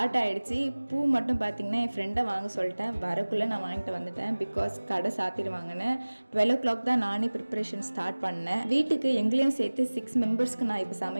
ஆகிடுச்சு. பூ மட்டும் பார்த்திங்கன்னா என் ஃப்ரெண்டை வாங்க சொல்லிட்டேன். வரக்குள்ளே நான் வாங்கிட்டு வந்துட்டேன். பிகாஸ் கடை சாத்திடுவாங்கன்னு 12 o'clock தான் நானே ப்ரிப்ரேஷன் ஸ்டார்ட் பண்ணேன். வீட்டுக்கு எங்களையும் சேர்த்து 6 மெம்பர்ஸ்க்கு நான் இப்போ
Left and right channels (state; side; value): inverted; both; correlation -1.00